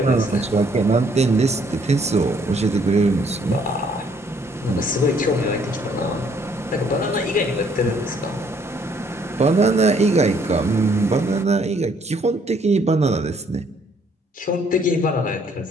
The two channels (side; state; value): both; normal; correlation 0.65